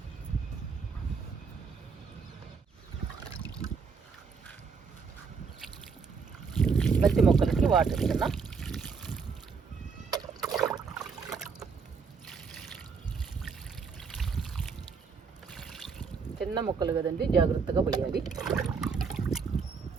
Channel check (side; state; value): left; quieter; 5.5 dB